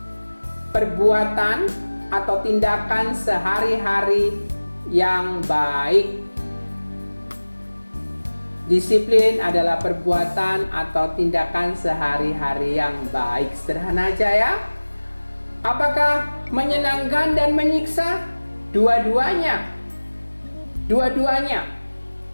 perbuatan atau tindakan sehari-hari yang baik. Disiplin adalah perbuatan atau tindakan sehari-hari yang baik. Sederhana aja ya. Apakah menyenangkan dan menyiksa? Dua-duanya. Dua-duanya.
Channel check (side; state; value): both; inverted; correlation -1.00